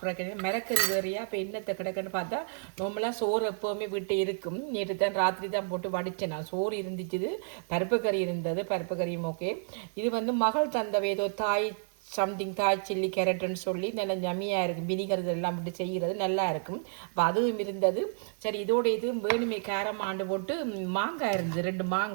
மிரக்கறி வேறையா இப்போ என்னத்தை கிடக்குன்னு பார்த்தா நார்மலாக சோறு எப்போவுமே வீட்டு இருக்கும். நேற்று தான் ராத்திரி தான் போட்டு வடித்தேன். நான் சோறு இருந்துச்சு, பருப்பு கறி இருந்தது, பருப்பு கறியும் ஓகே. இது வந்து மகள் தந்தவை ஏதோ தாய் சம்திங் தாய் சில்லி கேரட்டுன்னு சொல்லி நல்ல ஜம்மியாக இருக்கும். வினிகர் இதெல்லாம் விட்டு செய்கிறது நல்லா இருக்கும். அப்போ அதுவும் இருந்தது. சரி இதோட இதுவும் வேணுமே கேரம் ஆண்டு போட்டு மாங்காய் இருந்தது, 2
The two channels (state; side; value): silent; left; digital silence